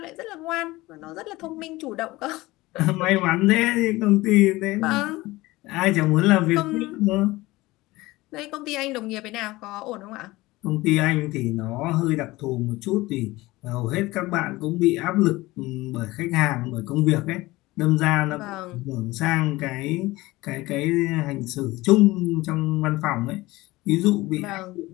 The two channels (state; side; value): quieter; right; 19.7 dB